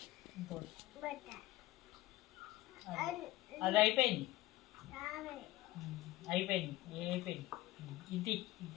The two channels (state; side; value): quieter; right; 17.2 dB